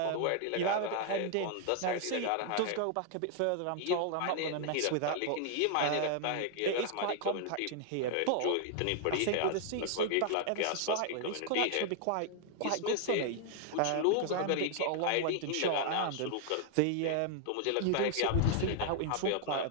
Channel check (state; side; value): different; both; correlation 0.00